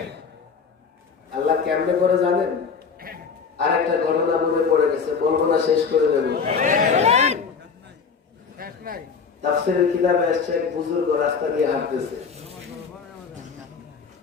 আল্লাহ কেমনে করে জানেন? আরেকটা ঘটনা মনে পড়ে গেছে, বলবো না, শেষ করে দেব। তাফসীরের কিতাবে এসেছে, এক বুজুর্গ রাস্তা দিয়ে হাঁটতেছে।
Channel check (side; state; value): right; quieter; 5.7 dB